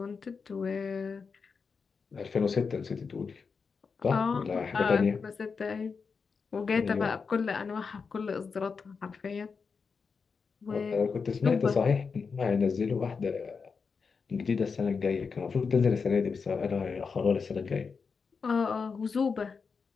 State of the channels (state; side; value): quieter; right; 5.3 dB